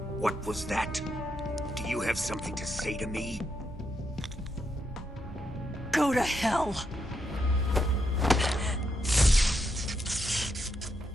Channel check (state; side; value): normal; both; correlation 0.81